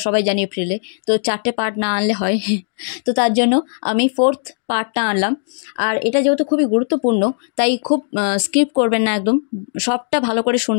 সবাই জানি এপ্রিলে, তো 4টে পার্ট না আনলে হয় তো তার জন্য আমি 4th পার্টটা আনলাম। আর এটা যেহেতু খুবই গুরুত্বপূর্ণ তাই খুব স্কিপ করবেন না, একদম সবটা ভালো করে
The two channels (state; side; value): silent; right; digital silence